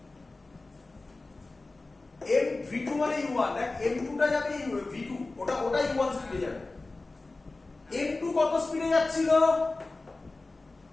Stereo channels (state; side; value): quieter; right; 3.3 dB